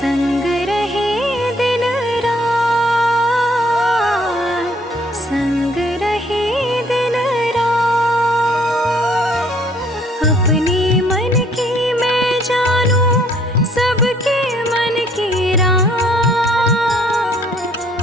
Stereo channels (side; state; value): both; normal; correlation 0.63